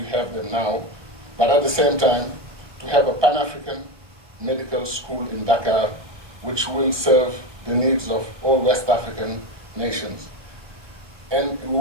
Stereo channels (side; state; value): left; late; 1.2 ms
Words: have them now, but at the same time to have a Pan-African medical school in Dakar, which will serve the needs of all West African nations. And we